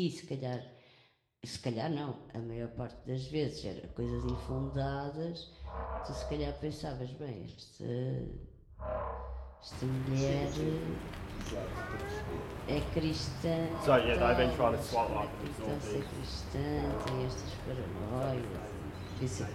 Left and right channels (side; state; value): both; identical; correlation 1.00